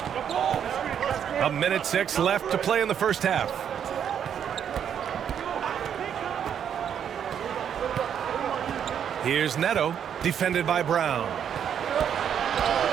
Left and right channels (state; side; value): quieter; left; 8.6 dB